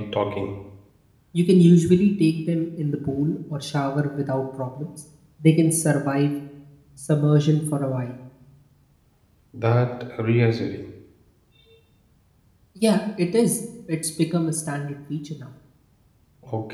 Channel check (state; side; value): identical; both; correlation 1.00